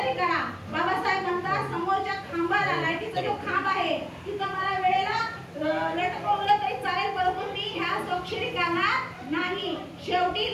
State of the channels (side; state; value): both; identical; correlation 1.00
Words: करा. बाबासाहेब म्हणतात समोरच्या खांबाला, लाईटीचा जो खांब आहे तिथं मला वेळेला लटकवलं तरी चालेल, परंतु मी ह्या स्वाक्षरी करणार नाही. शेवटी